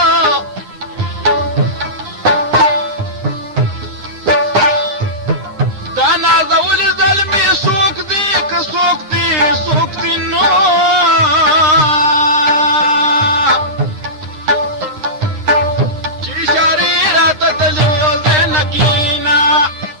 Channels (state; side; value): late; left; 9.7 ms